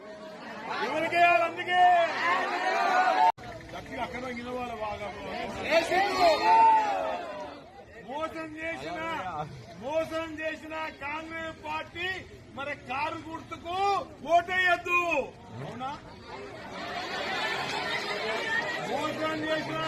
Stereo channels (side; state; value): both; identical; correlation 1.00